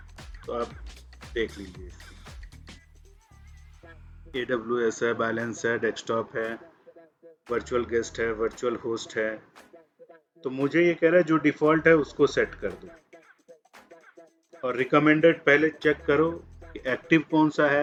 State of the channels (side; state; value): both; identical; correlation 1.00